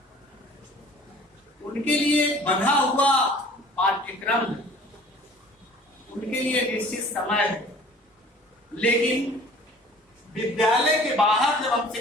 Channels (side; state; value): both; normal; correlation 0.48